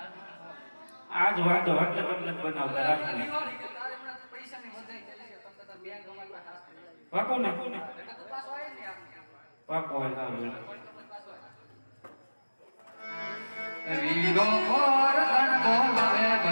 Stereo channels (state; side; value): inverted; both; correlation -1.00